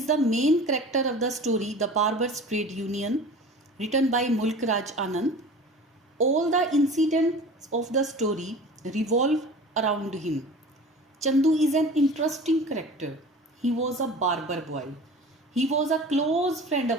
the main character of the story, The Barber's Trade Union, written by Mulk Raj Anand. All the incidents of the story revolve around him. Chandu is an interesting character. He was a barber boy. He was a close friend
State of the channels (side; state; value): both; normal; correlation 0.39